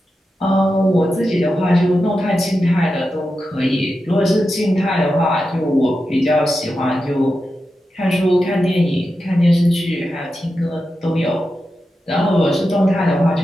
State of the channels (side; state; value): both; normal; correlation 0.90